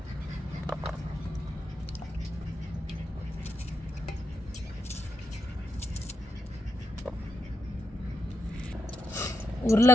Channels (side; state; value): both; normal; correlation 0.83